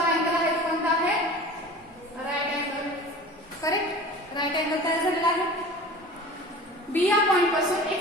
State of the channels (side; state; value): both; normal; correlation 0.39